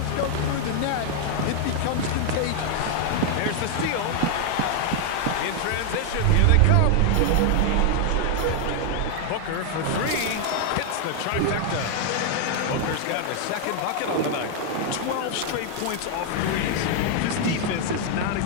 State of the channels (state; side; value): different; both; correlation 0.00